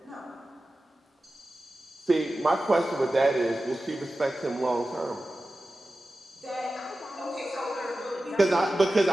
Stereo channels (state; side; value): normal; both; correlation 0.94